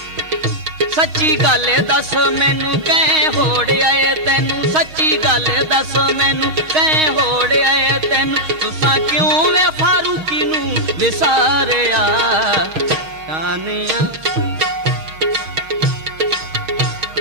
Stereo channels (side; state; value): left; late; 6.4 ms